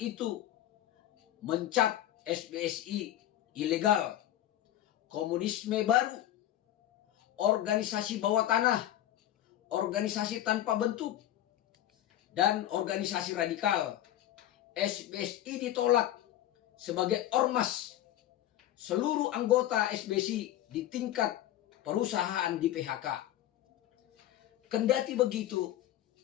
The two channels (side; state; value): right; quieter; 13.0 dB